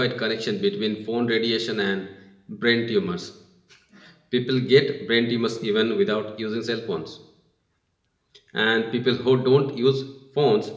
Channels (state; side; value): identical; both; correlation 1.00